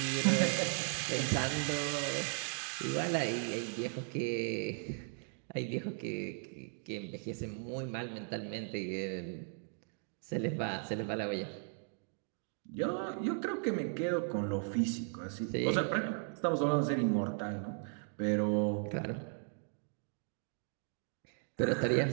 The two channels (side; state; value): left; silent; 53 dB below the other